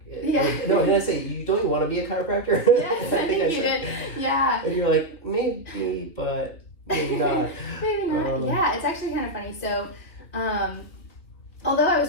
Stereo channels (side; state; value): right; late; 3.2 ms